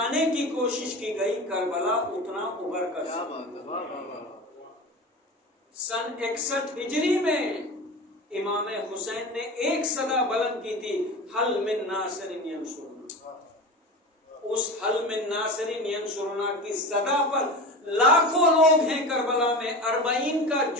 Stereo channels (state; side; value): normal; both; correlation 0.29